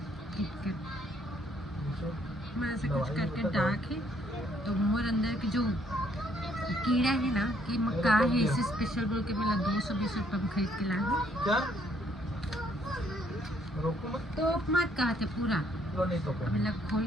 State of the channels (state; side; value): normal; both; correlation 0.67